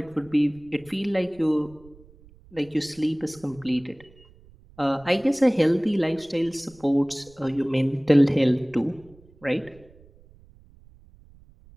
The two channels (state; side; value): noise; right; rumble, 26 dB below the sound